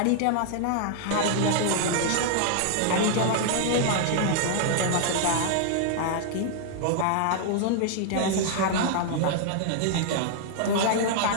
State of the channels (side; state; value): both; different; correlation -0.01